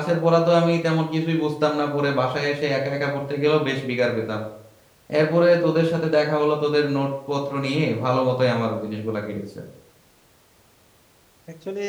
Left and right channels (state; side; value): identical; both; correlation 1.00